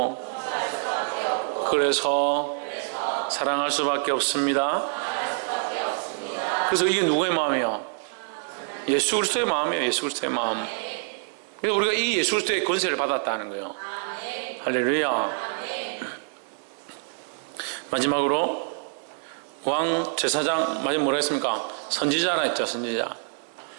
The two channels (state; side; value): silent; left; 61 dB below the other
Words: 그래서 사랑할 수밖에 없습니다. 그래서 이게 누구의 마음이에요? 예수 그리스도의 마음이에요. 예수 그리스도의 마음. 그래서 우리가 이 예수 그리스도의 권세를 받았다는 거예요. 할렐루야. 마지막으로 왕 제사장 마지막 뭐라 했습니까? 선지자라 했죠. 선지자.